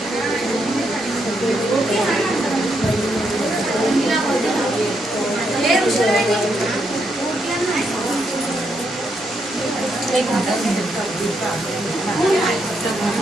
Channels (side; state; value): both; normal; correlation 0.79